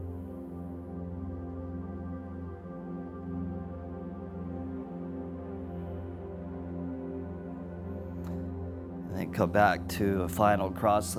And then come back to a final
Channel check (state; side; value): identical; both; correlation 1.00